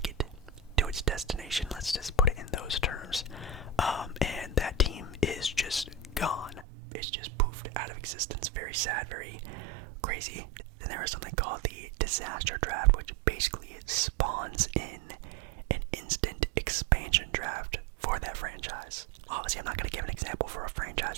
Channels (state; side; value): drops out; left; at 6.7 s